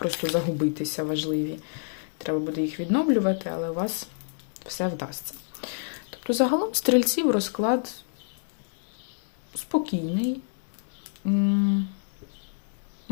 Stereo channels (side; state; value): right; silent; digital silence